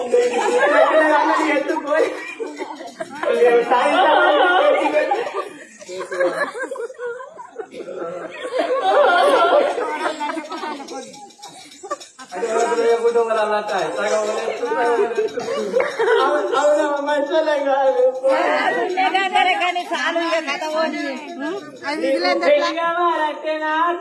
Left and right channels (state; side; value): identical; both; correlation 1.00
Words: ఎత్తుకోని అవునమ్మా మంచిగా కాదు కానీ చాలు ఇక కథ పోనీ. అది మిగిలింది ఎట్లా? పెళ్లి కావాలంటే